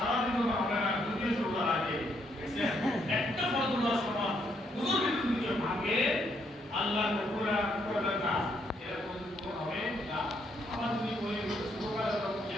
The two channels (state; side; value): normal; both; correlation 0.74